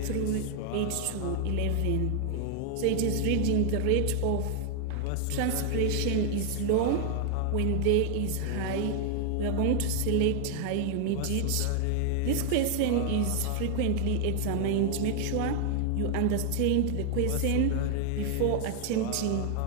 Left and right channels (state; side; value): different; both; correlation 0.00